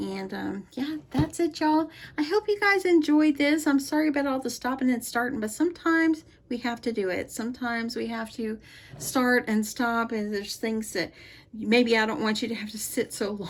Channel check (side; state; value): both; identical; correlation 1.00